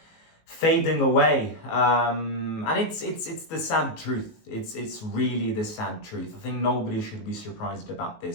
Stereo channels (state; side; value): late; right; 19 ms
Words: fading away, and it's the sad truth. It's really the sad truth. I think nobody should be surprised about